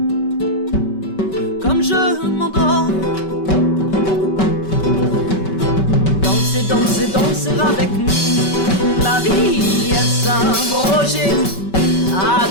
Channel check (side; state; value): right; late; 5.2 ms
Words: comme je m'endors. Danser, danser avec la vie, est-ce un projet à